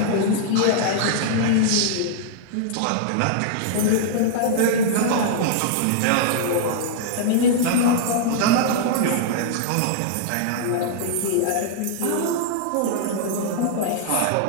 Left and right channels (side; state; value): both; different; correlation -0.01